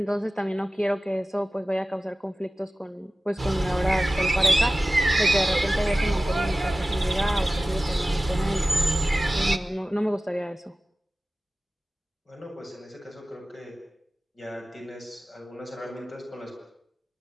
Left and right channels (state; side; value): normal; both; correlation 0.96